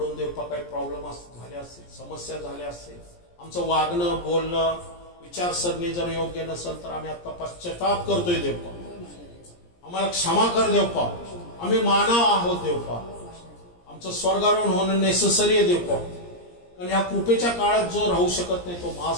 देवपा काही प्रॉब्लेम झाले असतील, समस्या झाल्या असतील, आमचं वागणं बोलणं विचारसरणी जर योग्य नसेल तर आम्ही आता पश्चाताप करतोय देवपा, आम्हाला क्षमा कर देवपा. आम्ही मानव आहोत देवपा, आमचं स्वर्गारोहण होणं नेसेसरी आहे देवपा. कारण ह्या कृपेच्या काळात जो राहू शकत नाही तो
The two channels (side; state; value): right; late; 17 ms